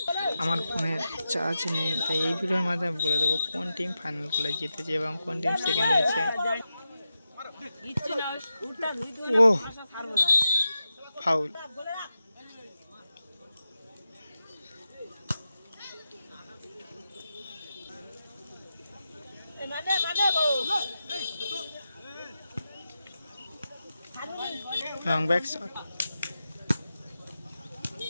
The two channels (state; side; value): inverted; both; correlation -0.91